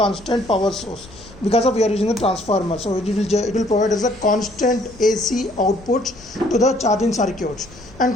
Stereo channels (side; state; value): left; noise; rumble, 22 dB below the sound